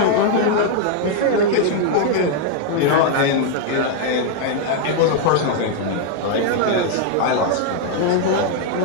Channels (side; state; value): both; different; correlation 0.00